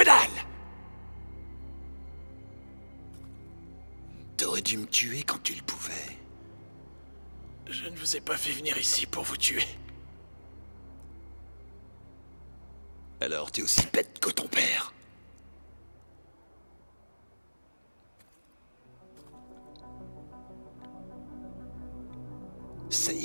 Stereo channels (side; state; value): both; inverted; correlation -1.00